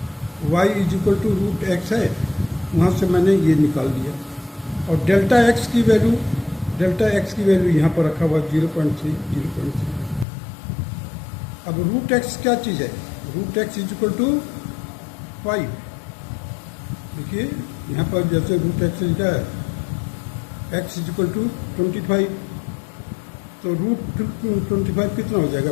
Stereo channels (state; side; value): drops out; right; at 10.2 s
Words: y is equal to root x है, वहाँ से मैंने ये निकाल दिया. और डेल्टा x की वैल्यू यहाँ पर रखा हुआ 0.3. अब रूट x क्या चीज़ है, root x is equal to 5. देखिए यहाँ पर जैसे रूट x लिखा है x इज इक्वल टू 25, तो रूट 25 कितना हो जाएगा